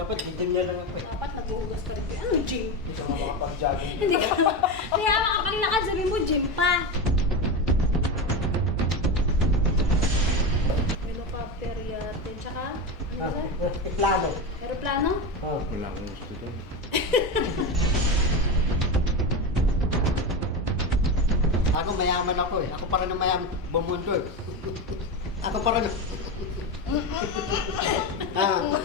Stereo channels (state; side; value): normal; both; correlation 0.18